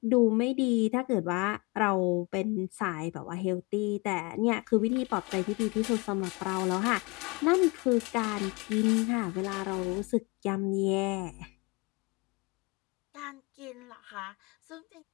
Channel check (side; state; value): right; quieter; 27.6 dB